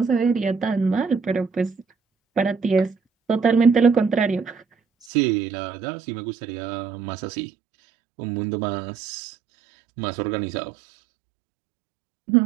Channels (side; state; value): left; drops out; at 5.1 s